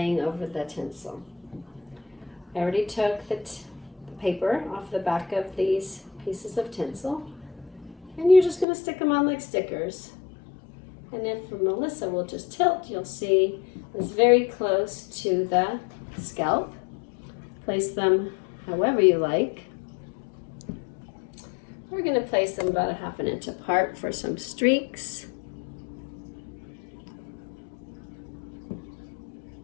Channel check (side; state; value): right; drops out; at 8.7 s